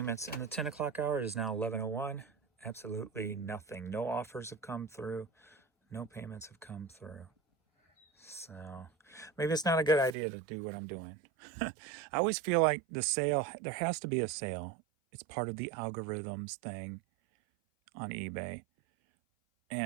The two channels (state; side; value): drops out; left; at 10.2 s